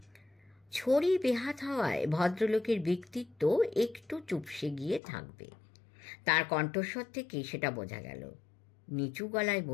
ছড়ি বেহাত হওয়ায় ভদ্রলোকের ব্যক্তিত্ব একটু চুপসে গিয়ে থাকবে, তার কণ্ঠস্বর থেকে সেটা বোঝা গেল। নিচু গলায়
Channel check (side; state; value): right; drops out; at 5.0 s